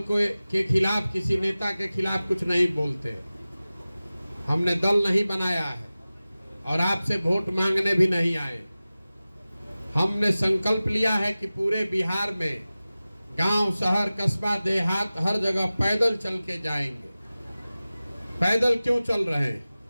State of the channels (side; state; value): both; inverted; correlation -0.97